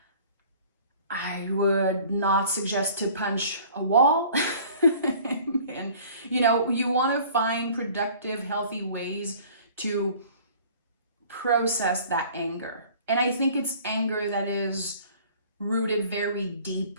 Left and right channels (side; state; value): both; inverted; correlation -0.50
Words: I would not suggest to punch a wall. And, you want to find productive, healthy ways to process that anger. And I think it's anger that is rooted very